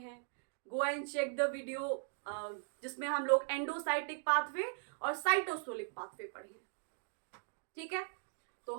Go and check the video जिसमें हम लोग एंडोसाइटिक पाथवे और साइटोसोलिक पाथवे पढ़े हैं। ठीक है, तो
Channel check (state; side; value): silent; left; digital silence